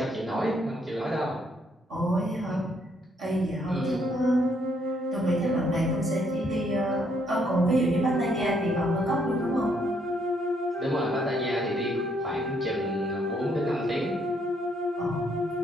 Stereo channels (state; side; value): normal; both; correlation 0.71